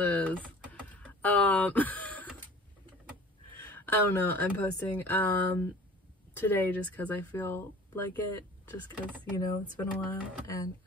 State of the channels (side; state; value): both; normal; correlation 0.45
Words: I don't know. I'm posting today just because I feel like it. Just because, you know, it's been a while and